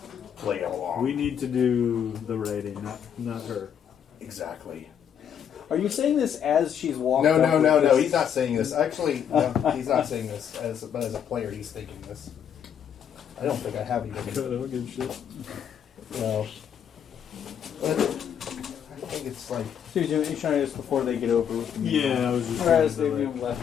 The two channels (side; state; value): right; quieter; 8.6 dB